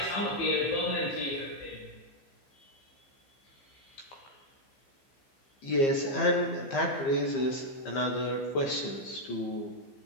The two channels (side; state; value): right; late; 15 ms